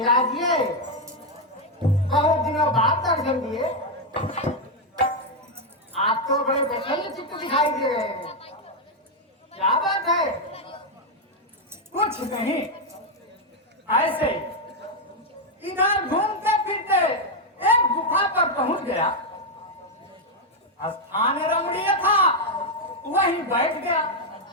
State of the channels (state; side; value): normal; both; correlation 0.02